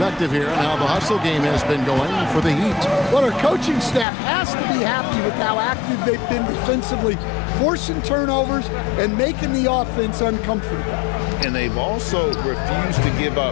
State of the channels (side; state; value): right; drops out; at 4.0 s